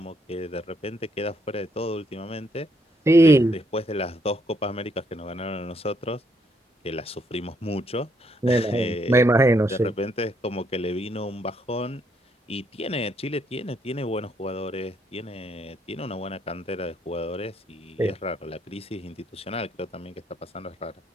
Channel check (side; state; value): both; normal; correlation 0.73